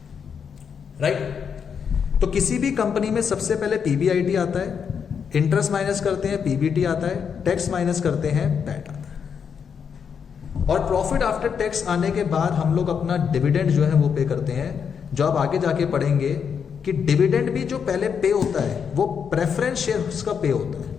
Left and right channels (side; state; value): right; quieter; 6.9 dB